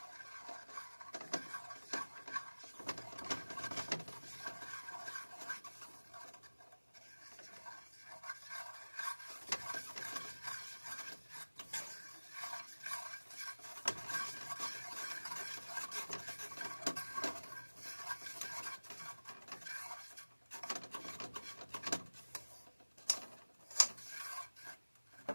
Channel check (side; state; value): both; inverted; correlation -1.00